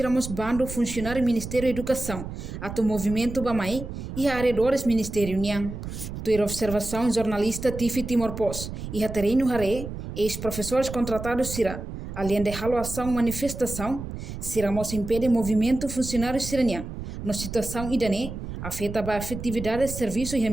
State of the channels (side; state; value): right; noise; rumble, 8 dB below the sound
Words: bando funcionário Ministério da Educação, ato movimento Bamai e arredores Ministério Niang. Tua observação jornalista Tifi Timor Pos e Haterino Hare, ex-professores contratados será, além de ação manifestação, seremos impede movimento funcionário siraniang, na situação idane, afeta a efetividade de serviço e o